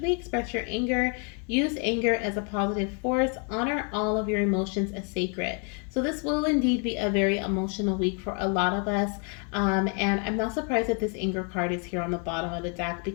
express your anger. Use anger as a positive force. Honor all of your emotions as sacred. So this will indeed be a very emotional week for a lot of us. And I'm not surprised that this anger card is here on the bottom of the deck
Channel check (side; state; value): right; quieter; 38.4 dB